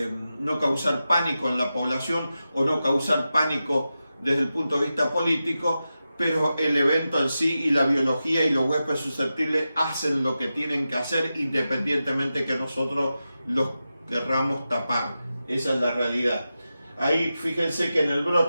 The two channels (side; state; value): both; inverted; correlation -0.92